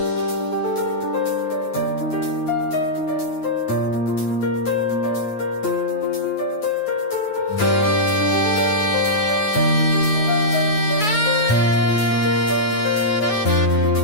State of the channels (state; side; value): late; right; 9.3 ms